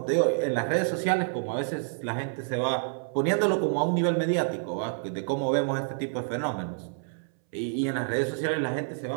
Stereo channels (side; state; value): left; silent; 59 dB below the other